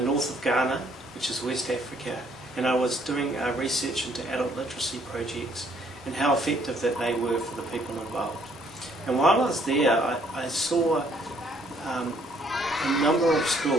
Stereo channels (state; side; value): normal; both; correlation 0.65